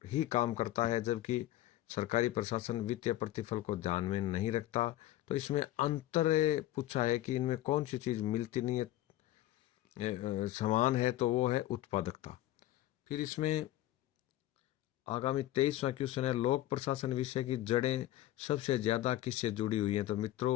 ही काम करता है, जबकि सरकारी प्रशासन वित्तीय प्रतिफल को ध्यान में नहीं रखता। तो इसमें अंतर पूछा है कि इनमें कौन सी चीज मिलती नहीं है, समान है, तो वो है उत्पादकता। फिर इसमें आगामी 23वां क्वेश्चन है, लोक प्रशासन विषय की जड़ें सबसे ज्यादा किससे जुड़ी हुई हैं। तो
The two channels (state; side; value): quieter; right; 14.7 dB